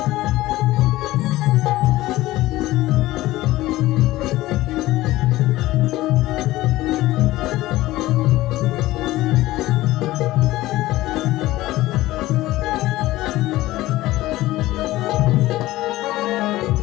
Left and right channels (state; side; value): quieter; right; 17.1 dB